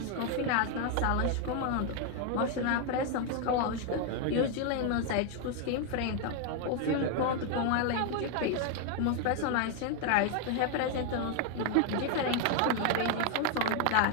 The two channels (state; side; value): different; both; correlation 0.01